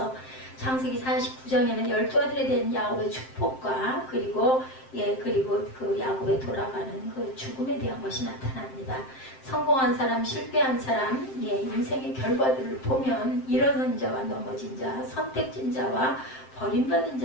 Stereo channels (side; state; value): right; late; 7.6 ms